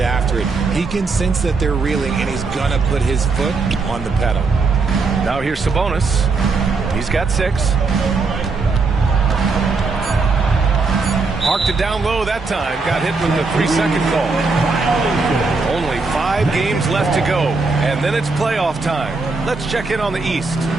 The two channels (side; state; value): left; quieter; 4.1 dB